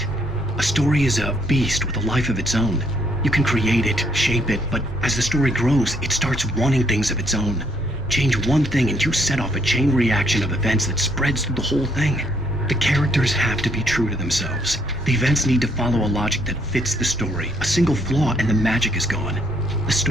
A story is a beast with a life of its own. You can create it, shape it, but as the story grows, it starts wanting things of its own. Change one thing and you set off a chain reaction of events that spreads through the whole thing. The characters have to be true to themselves. The events need to follow a logic that fits the story. A single flaw and the magic is gone. The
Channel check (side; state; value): both; normal; correlation 0.68